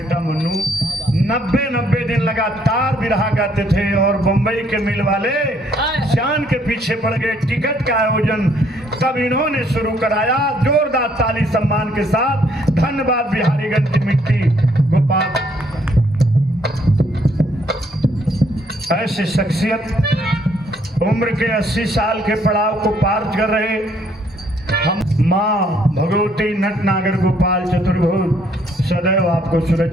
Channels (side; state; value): both; normal; correlation 0.67